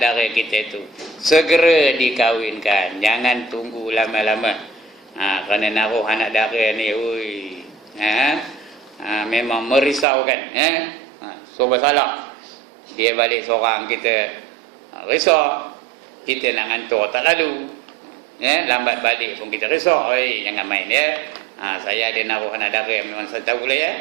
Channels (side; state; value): left; drops out; at 10.1 s